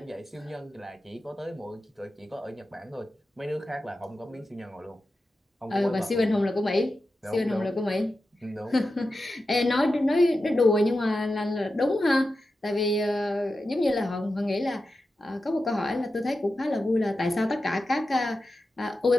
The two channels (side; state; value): both; normal; correlation 0.92